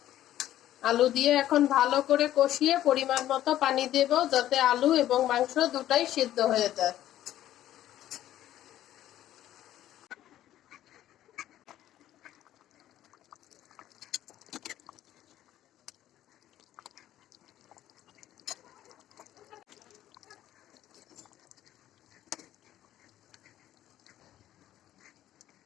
আলু দিয়ে এখন ভালো করে কষিয়ে পরিমাণ মতো পানি দেব, যাতে আলু এবং মাংস দুটাই সিদ্ধ হয়ে যায়।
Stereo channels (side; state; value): right; quieter; 12.9 dB